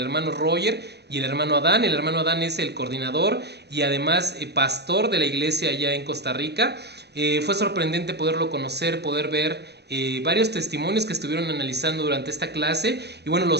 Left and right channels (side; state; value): left; late; 0.48 ms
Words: Roger y el hermano Adán. El hermano Adán es el coordinador y además pastor de la iglesia allá en Costa Rica. Fue sorprendente poderlo conocer, poder ver varios testimonios que estuvieron analizando durante esta clase. Y bueno, lo